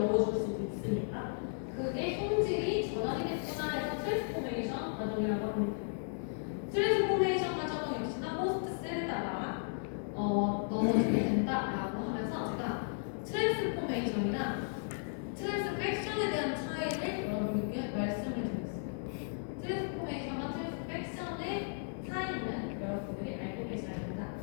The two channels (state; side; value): silent; right; digital silence